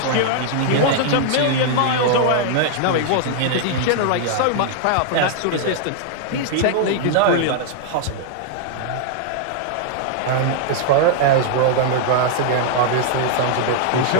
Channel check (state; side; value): different; both; correlation -0.01